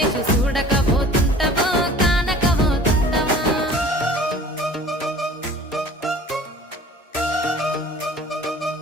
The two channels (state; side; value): normal; both; correlation 0.46